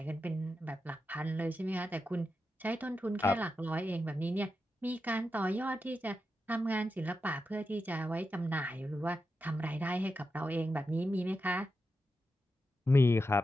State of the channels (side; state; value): both; normal; correlation 0.88